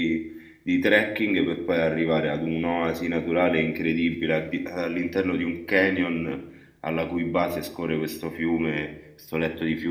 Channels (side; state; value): both; identical; correlation 1.00